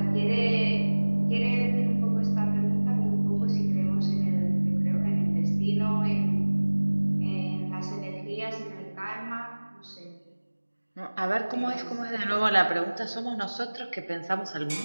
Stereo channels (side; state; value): both; inverted; correlation -1.00